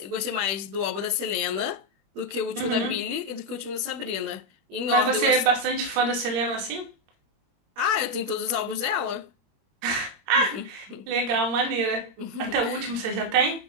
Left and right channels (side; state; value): left; late; 21 ms